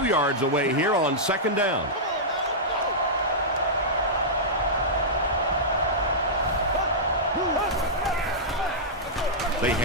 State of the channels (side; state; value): both; normal; correlation -0.12